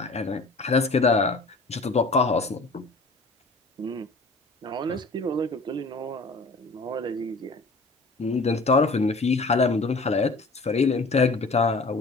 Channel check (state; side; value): quieter; right; 3.3 dB